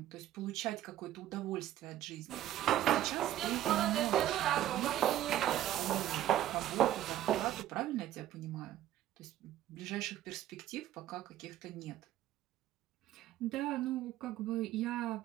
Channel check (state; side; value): quieter; left; 12.6 dB